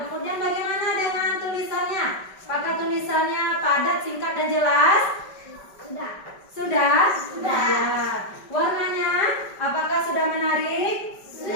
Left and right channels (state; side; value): late; right; 5.2 ms